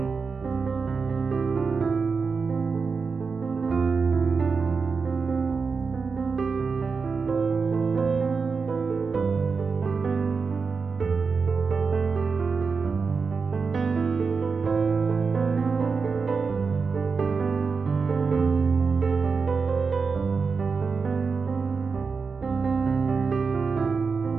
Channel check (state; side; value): quieter; left; 5.0 dB